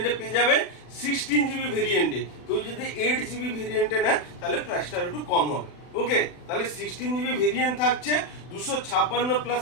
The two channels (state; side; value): late; right; 40 ms